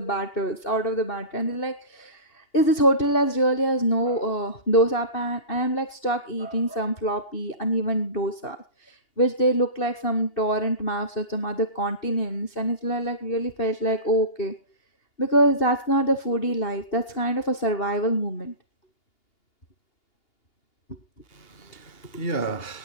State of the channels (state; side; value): late; right; 2.8 ms